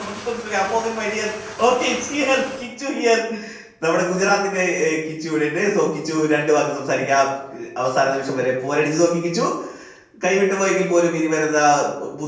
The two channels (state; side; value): identical; both; correlation 1.00